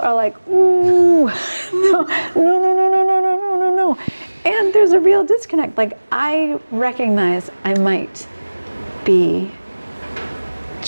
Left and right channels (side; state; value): both; inverted; correlation -1.00